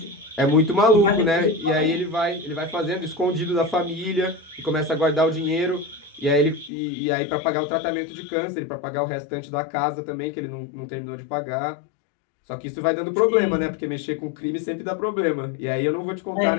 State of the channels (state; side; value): drops out; right; at 6.7 s